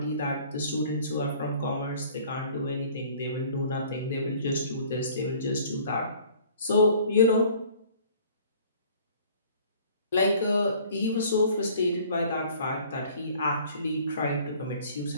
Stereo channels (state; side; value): inverted; both; correlation -0.52